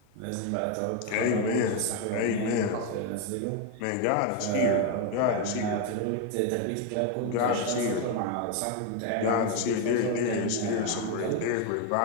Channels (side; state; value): both; different; correlation 0.02